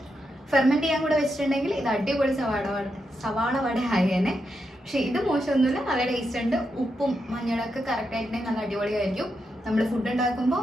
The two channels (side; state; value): both; normal; correlation 0.84